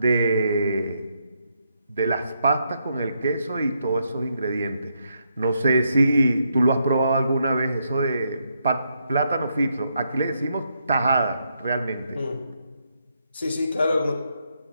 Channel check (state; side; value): inverted; both; correlation -0.79